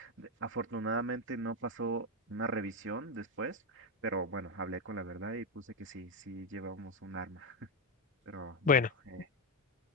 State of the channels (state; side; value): normal; both; correlation 0.08